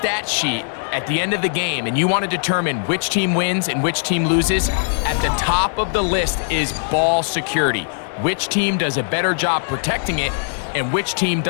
sheet at the end of the game and you want to determine which team wins and which team loses, at the top of the list is ball security. Which team does a better job protecting it, and which team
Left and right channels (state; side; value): silent; right; digital silence